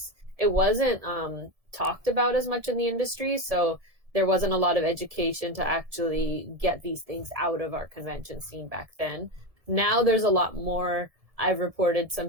wasn't talked about as much in the industry. So there wasn't a lot of education to actually get these things out of our convention scene back then. Now there's a lot more I've reported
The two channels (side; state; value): left; late; 1.7 ms